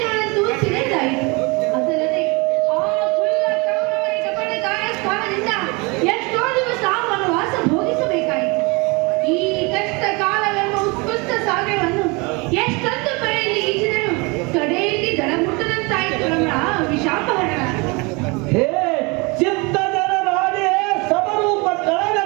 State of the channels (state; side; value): quieter; left; 27.8 dB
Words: ಸಿರಿದಾಯಿತು. ಅದಲ್ಲದೆ ಆ ಕುಲ್ಲ ಕೌರವರ ಕಪಟಕಾರ ಸ್ಥಾನದಿಂದ ಎಷ್ಟೋ ದಿವಸ ವನವಾಸ ಭೋಗಿಸಬೇಕಾಯಿತು. ಈ ಕಷ್ಟ ಕಾಲವೆಂಬ ಉತ್ಕೃಷ್ಟ ಸಾಗರವನ್ನು ಎಷ್ಟೊಂದು ಕಡೆಯಲ್ಲಿ ಈಜಿದರು ಕಡೆಯಲ್ಲಿ ದಡ ಮುಟ್ಟದಂತಾಯಿತು ನಮ್ಮ ವಿಷಾಪಹರಣ. ಹೇ ಚಿತ್ತಜನ ನಾನೇ ಸಮರೂಪ